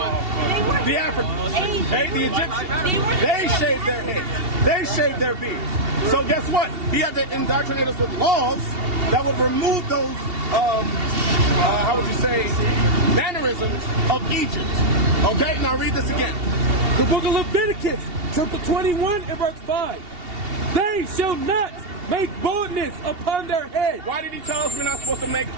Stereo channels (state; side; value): late; left; 2.7 ms